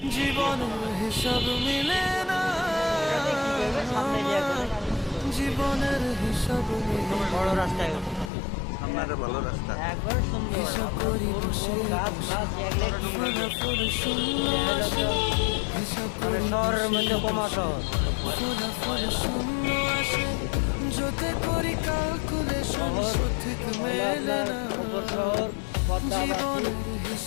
জীবনের হিসাব মিলে না, জীবনের হিসাব মিলে বড় রাস্তায় সামনে ভালো রাস্তা। একবার সুন্দর হিসাব করি বসে গাছ গাছ এগুলো কি ফলাফল শূন্য আসে, হিসাব করি শহরের মধ্যে কমা শহর ফলাফল শূন্য আসে, যতে করি ক্যালকুলেশন সঠিক মেলে না, শহর পদ্মা জীবনের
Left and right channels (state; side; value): drops out; right; at 8.3 s